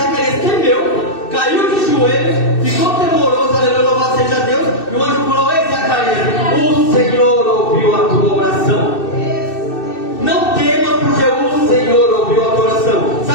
temeu, caiu de joelhos, ficou temoroso, aleluia, louvado seja Deus. E o anjo falou: ei, Zacarias, o Senhor ouviu a tua oração. Não temas, porque o Senhor ouviu a tua oração.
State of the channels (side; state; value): right; late; 2.6 ms